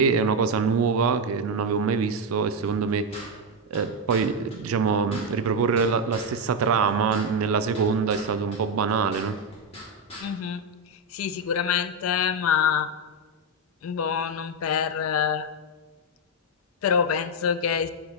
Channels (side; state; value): both; normal; correlation 0.05